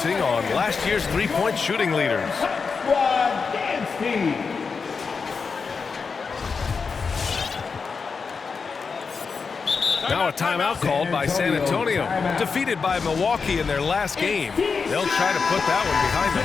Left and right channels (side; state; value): right; quieter; 5.2 dB